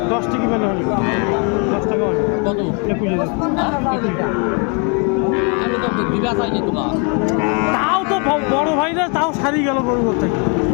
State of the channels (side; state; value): right; quieter; 35.7 dB